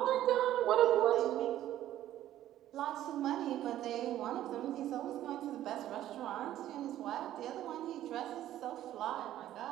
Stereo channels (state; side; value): quieter; left; 12.8 dB